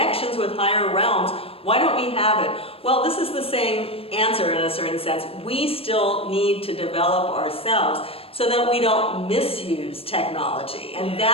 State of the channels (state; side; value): late; right; 0.28 ms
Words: with higher realms, why don't we have it? Well, this is the same answer in a certain sense. We still need to develop ourselves so that we don't misuse technology. And